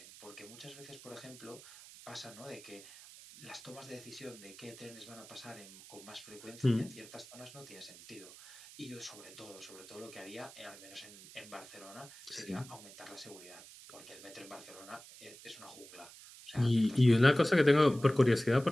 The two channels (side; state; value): right; noise; hiss, 17 dB below the sound